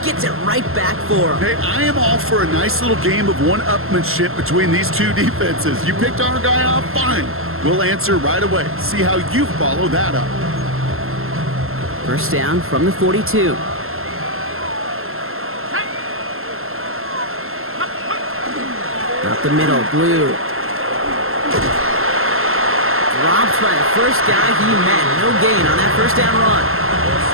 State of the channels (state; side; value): late; left; 0.62 ms